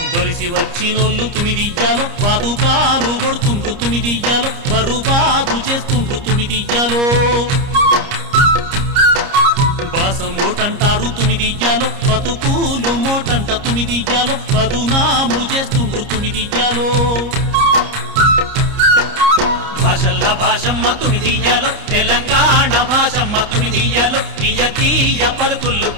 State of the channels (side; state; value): left; late; 30 ms